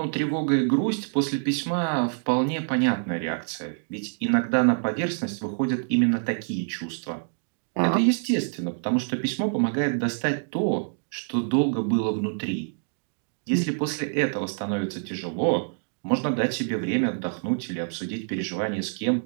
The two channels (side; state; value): left; silent; digital silence